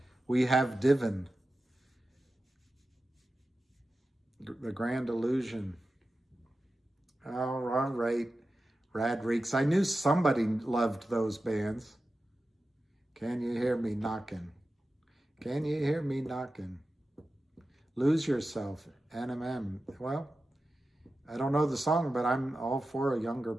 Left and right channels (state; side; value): normal; both; correlation 0.93